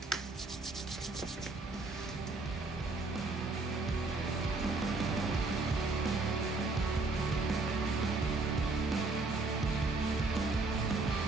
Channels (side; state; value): left; quieter; 3.5 dB